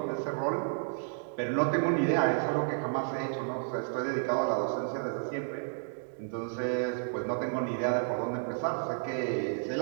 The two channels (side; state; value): left; silent; digital silence